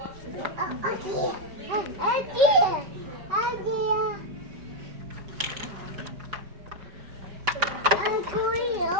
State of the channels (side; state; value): left; late; 5.0 ms